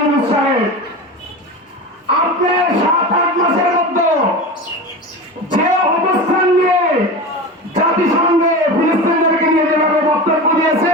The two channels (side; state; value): both; normal; correlation 0.28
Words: সাহেব, আপনি 7-8 মাসের মধ্যে যে অবস্থান নিয়ে জাতিসংঘে ফিলিস্তিনিদেরকে নিয়ে যেভাবে বক্তব্য